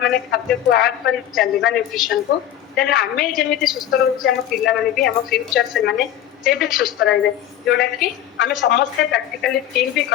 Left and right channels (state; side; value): quieter; right; 11.4 dB